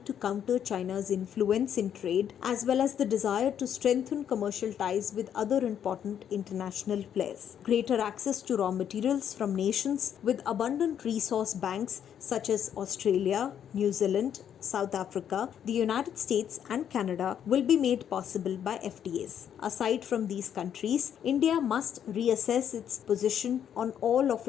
to counter China's influence in trade as well as the desire to strengthen commercial ties with other important international players. Greater access to raw materials from nations with abundant resource banks such as Australia, New Zealand, South Africa, the United States and Canada will be made possible by FTAs. Aside from these countries, India must reassess its position on all of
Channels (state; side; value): quieter; right; 9.1 dB